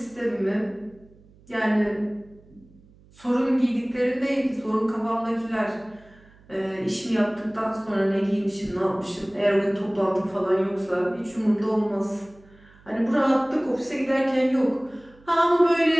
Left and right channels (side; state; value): right; noise; hum, 27 dB below the sound